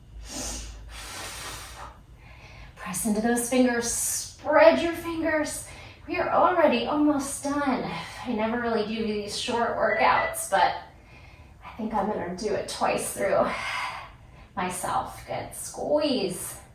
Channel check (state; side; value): identical; both; correlation 1.00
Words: Press into those fingers, spread your fingers. We are already almost done. I never really do these short workouts, but I think I'm gonna do it twice through myself. Good, squeeze.